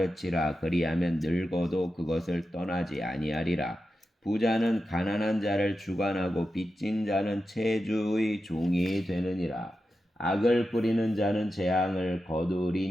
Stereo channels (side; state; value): both; normal; correlation 0.90